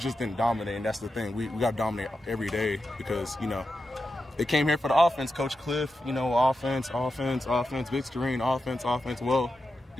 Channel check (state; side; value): normal; both; correlation 0.89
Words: didn't dominate, and that's the thing. We got to dominate every day because, you know, they came here for the offense. Coach Cliff, you know, offense, Vic Starine, offense. Well,